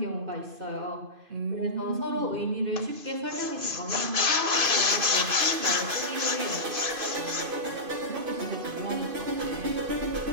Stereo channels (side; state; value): left; late; 2.5 ms